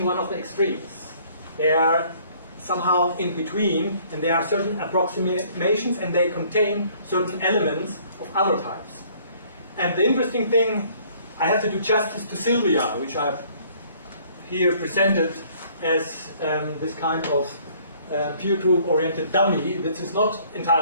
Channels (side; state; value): both; inverted; correlation -0.59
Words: one of the extremes. They are somehow in between, and there are certain approximations and they contain certain elements of other types. And the interesting thing, I have to do justice to Sylvia, which I've here presented as this kind of peer group oriented dummy. This is not